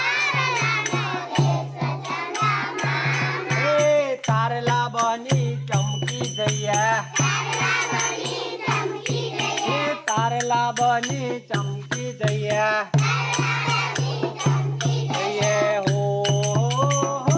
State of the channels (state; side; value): identical; both; correlation 1.00